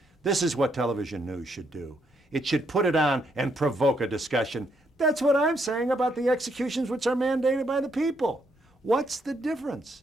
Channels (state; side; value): normal; both; correlation 0.74